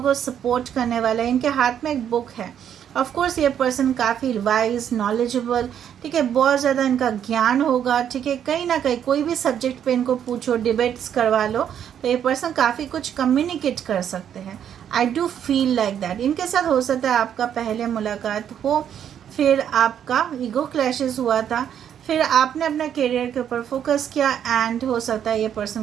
को सपोर्ट करने वाला है। इनके हाथ में एक बुक है। ऑफ कोर्स ये पर्सन काफ़ी वाइज, नॉलेजेबल, ठीक है, बहुत ज़्यादा इनका ज्ञान होगा, ठीक है। कहीं ना कहीं कोई भी सब्जेक्ट पे इनको पूछो, डिबेट्स करवा लो, तो ये पर्सन काफ़ी कुछ कम्युनिकेट कर सकते हैं। I do feel like that. इनके साथ हो सकता है आपका पहले मुलाकात हो, फिर आपका ईगो क्लैशेस हुआ था, फिर आपने अपना करियर के ऊपर फोकस किया एंड हो सकता है ये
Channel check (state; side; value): quieter; left; 9.2 dB